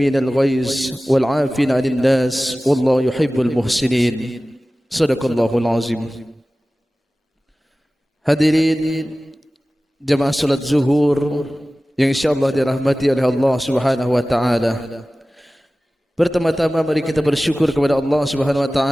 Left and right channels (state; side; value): normal; both; correlation 0.97